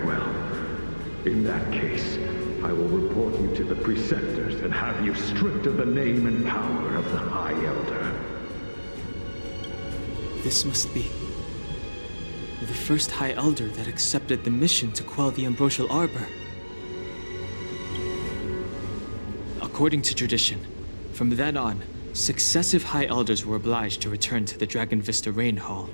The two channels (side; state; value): both; inverted; correlation -1.00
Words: In that case, I will report you to the preceptors and have you stripped of the name and power of the High Elder. This must be the first High Elder that accepted the mission to quell the Ambrosial Arbor. According to tradition, from then on, successive High Elders were obliged to return to the Dragon Vista Rain Hall.